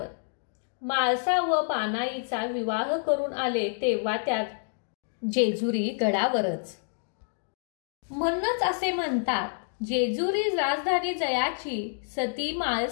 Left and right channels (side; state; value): right; silent; digital silence